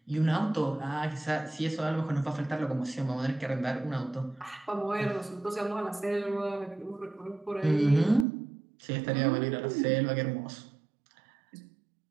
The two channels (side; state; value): left; drops out; at 8.2 s